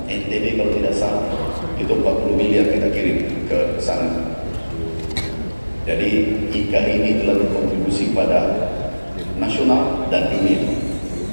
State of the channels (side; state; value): both; inverted; correlation -1.00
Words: NTB kalau tidak salah, itu 40 miliar kita kirim ke sana. Jadi IKA ini telah berkontribusi pada nasional dan dunia.